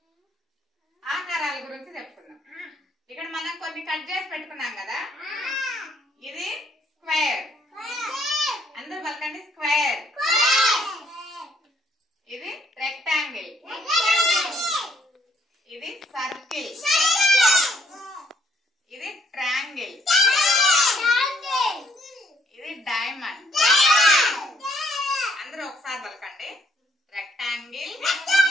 ఆకారాల గురించి చెప్పుకుందాం. ఇక్కడ మనం కొన్ని కట్ చేసి పెట్టుకున్నాం కదా. ఇది స్క్వేర్, అందరూ పలకండి స్క్వేర్. ఇది రెక్టాంగిల్, ఇది సర్కిల్, ఇది ట్రయాంగిల్, ఇది డైమండ్. అందరూ ఒకసారి పలకండి rectangle,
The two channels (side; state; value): both; normal; correlation 0.68